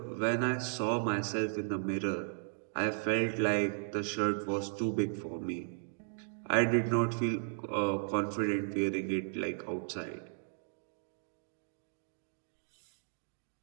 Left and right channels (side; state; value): left; silent; digital silence